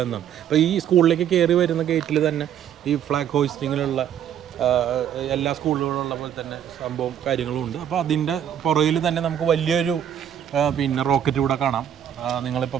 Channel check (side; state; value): left; quieter; 9.6 dB